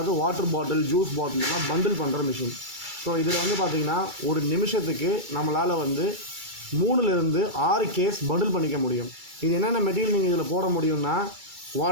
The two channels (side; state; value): left; late; 2.3 ms